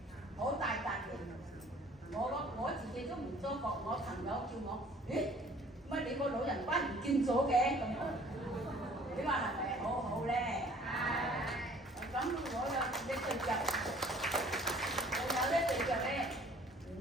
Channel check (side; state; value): both; normal; correlation 0.53